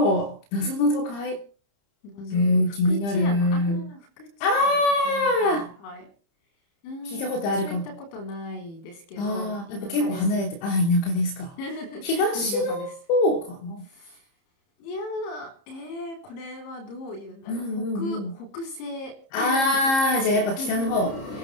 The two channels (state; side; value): late; right; 30 ms